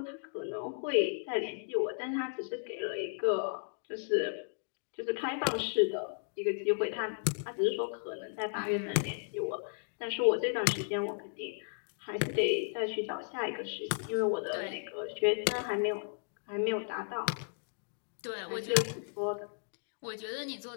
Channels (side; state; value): right; silent; digital silence